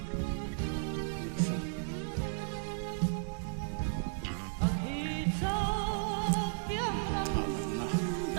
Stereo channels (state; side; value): silent; left; digital silence